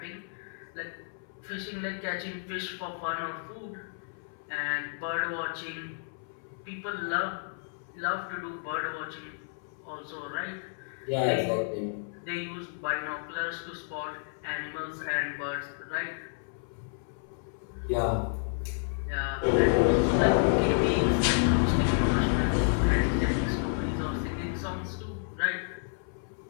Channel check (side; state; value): right; silent; 57 dB below the other